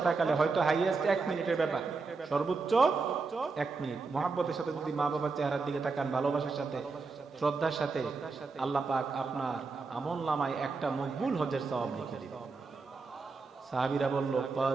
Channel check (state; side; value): quieter; left; 4.3 dB